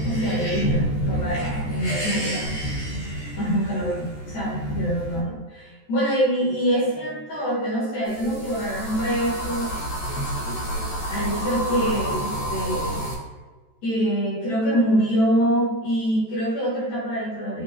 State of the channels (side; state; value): right; late; 14 ms